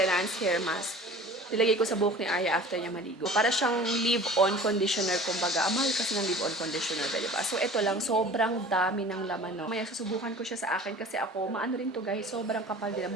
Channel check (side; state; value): both; normal; correlation 0.42